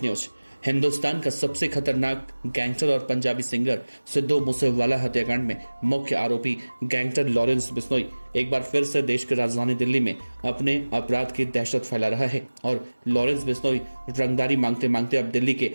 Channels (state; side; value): inverted; both; correlation -1.00